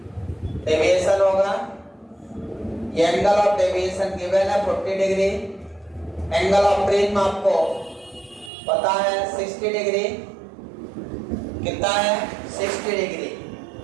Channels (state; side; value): drops out; left; at 8.5 s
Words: डेविएशन होगा, ये एंगल ऑफ डेविएशन गिवन है 40 डिग्री। एंगल ऑफ प्रिज्म आपको पता है 60 डिग्री। कितना है? 60 डिग्री।